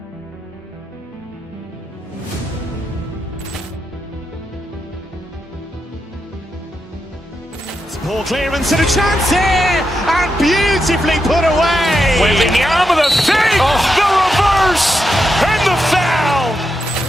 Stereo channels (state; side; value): normal; both; correlation 0.85